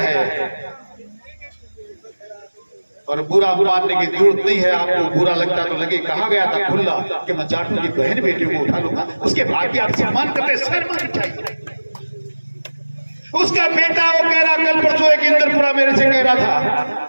और बुरा मानने की जरूरत नहीं है। आपको बुरा लगता तो लगे, कहा गया था खुला कि मैं जाटों की बहन बेटियों को उठा लूंगा, उसके भाग्य आप सम्मान करते शर्म चाहिए। उसका बेटा वो कह रहा, कल परसों एक इंद्रपुरा मेरे से कह रहा था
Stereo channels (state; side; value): inverted; both; correlation -1.00